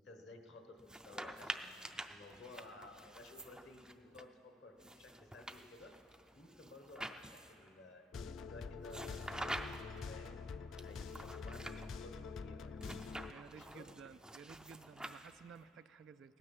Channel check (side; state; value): both; normal; correlation 0.73